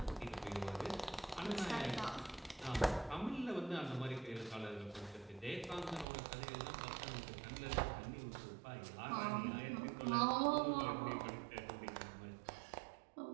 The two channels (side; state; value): left; drops out; at 6.1 s